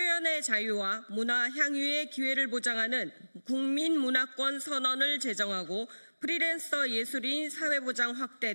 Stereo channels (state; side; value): inverted; both; correlation -1.00